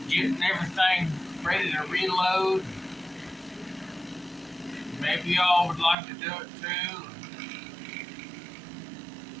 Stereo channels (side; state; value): left; drops out; at 6.0 s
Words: getting everything ready to reload. Maybe y'all would like to do it too.